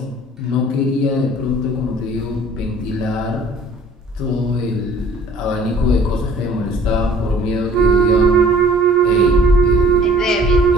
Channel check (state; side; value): normal; both; correlation 0.53